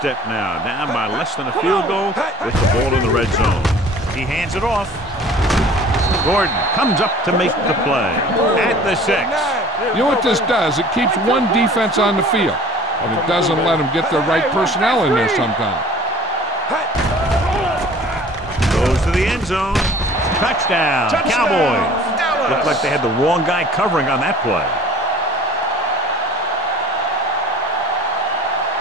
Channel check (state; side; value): normal; both; correlation 0.48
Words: now, down by less than a field goal with the ball in the red zone. He hands it off. Gordon comes up to make the play at the 6. You know what this does? It keeps one defense on the field, and it doesn't let them get the right personnel in there sometimes. Goes to the end zone. Touchdown, Cowboys. Looked like they had the wrong guy covering on that play.